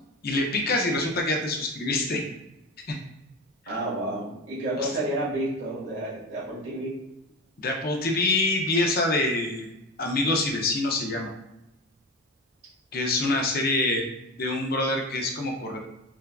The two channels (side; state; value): both; normal; correlation 0.25